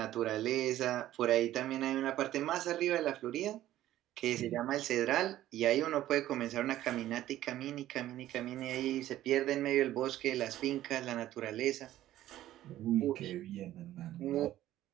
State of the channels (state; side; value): quieter; left; 13.8 dB